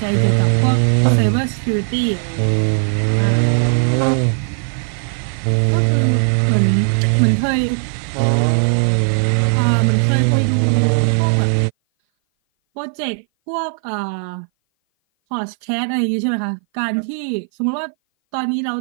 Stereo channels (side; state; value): left; silent; 58 dB below the other